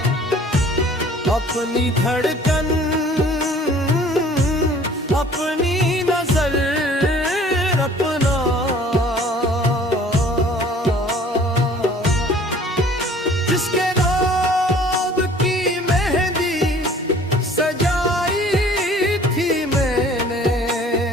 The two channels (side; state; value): both; normal; correlation 0.52